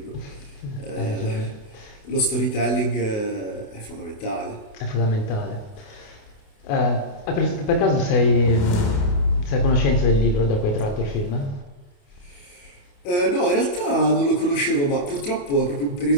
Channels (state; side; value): late; right; 28 ms